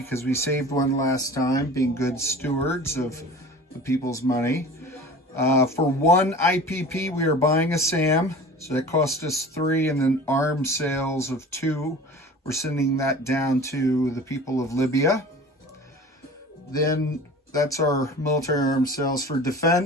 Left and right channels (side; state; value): both; normal; correlation 0.40